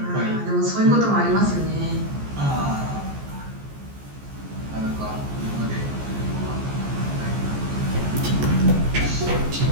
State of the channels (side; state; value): left; late; 14 ms